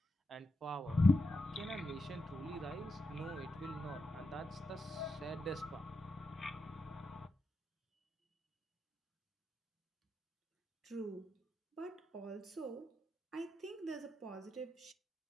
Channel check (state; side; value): normal; both; correlation 0.86